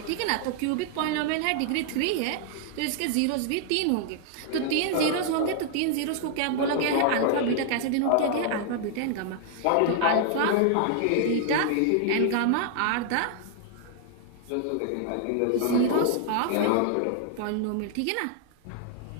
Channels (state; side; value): different; both; correlation 0.00